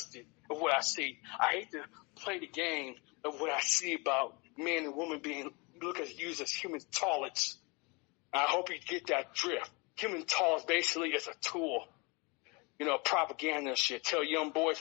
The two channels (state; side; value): quieter; right; 28.9 dB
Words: of what I see. I hate to play the game of what I see about men and women being used as human toilets. I hope you get that drift. Human toilets basically is a tool. You know, propaganda and shit. Tell young boys